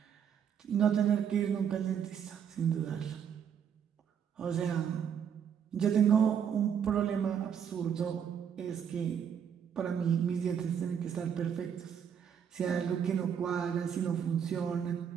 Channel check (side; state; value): left; quieter; 8.1 dB